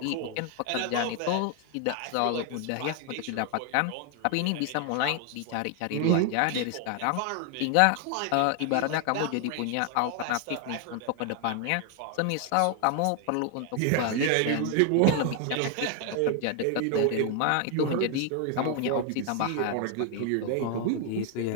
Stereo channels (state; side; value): different; both; correlation 0.00